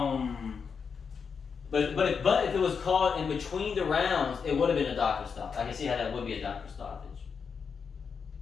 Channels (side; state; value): right; quieter; 6.0 dB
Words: But if it was called in between the rounds, it would have been a doctor stop. I can see how that would be a doctor stoppage.